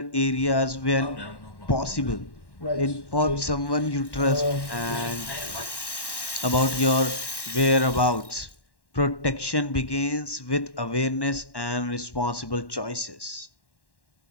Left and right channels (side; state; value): right; late; 1.1 ms